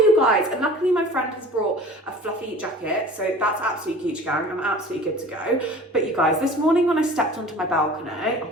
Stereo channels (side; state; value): both; normal; correlation 0.43